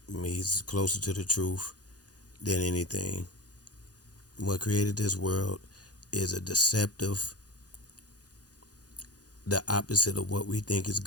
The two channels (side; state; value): right; late; 0.68 ms